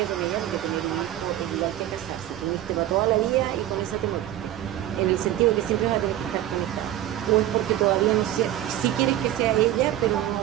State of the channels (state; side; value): quieter; left; 13.1 dB